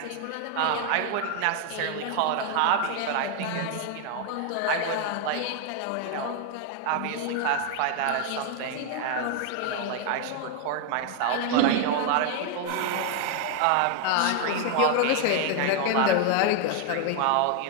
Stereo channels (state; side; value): different; both; correlation 0.00